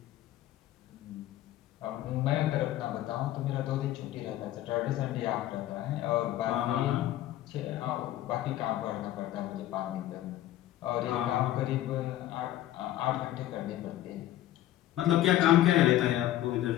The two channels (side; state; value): right; quieter; 13.7 dB